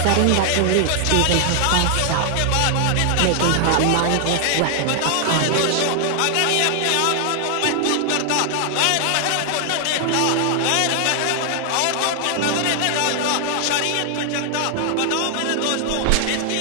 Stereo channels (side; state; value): both; different; correlation 0.00